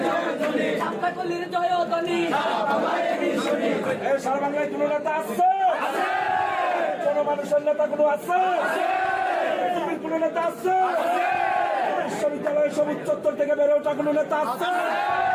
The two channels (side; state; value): both; identical; correlation 1.00